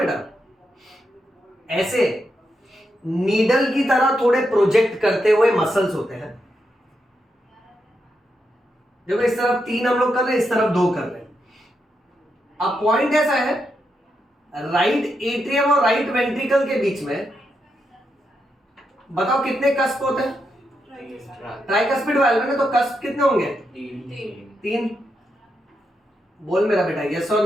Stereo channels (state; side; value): normal; both; correlation 0.84